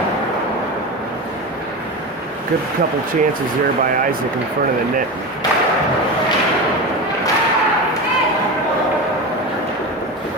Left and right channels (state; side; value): normal; both; correlation 0.23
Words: Good couple chances there by Isaac in front of the net.